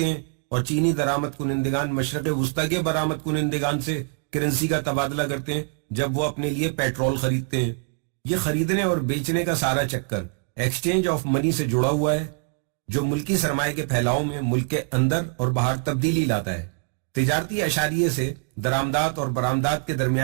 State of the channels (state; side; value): quieter; left; 35.6 dB